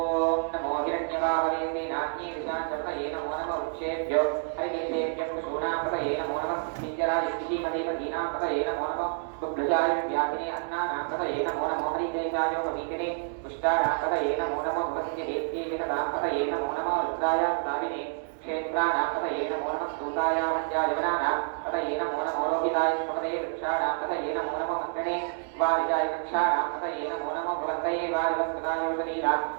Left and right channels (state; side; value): silent; left; 59 dB below the other